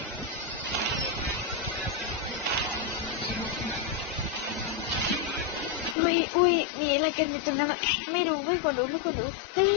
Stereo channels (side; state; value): right; drops out; at 6.0 s